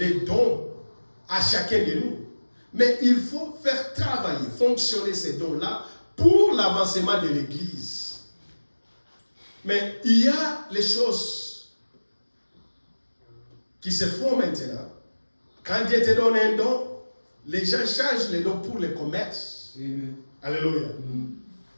dons à chacun de nous. Mais il faut faire travailler, fonctionner ces dons-là pour l'avancement de l'église. Mais il y a les choses qui se font maintenant. Quand Dieu te donne un don, les gens changent les dons pour le commerce. Alléluia.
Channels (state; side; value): inverted; both; correlation -1.00